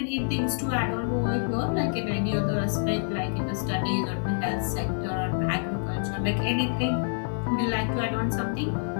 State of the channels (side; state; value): right; silent; digital silence